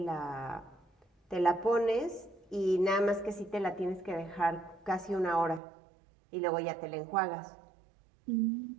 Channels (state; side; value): drops out; left; at 5.6 s